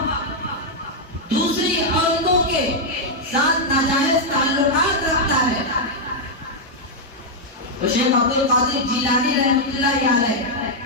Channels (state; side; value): normal; both; correlation -0.03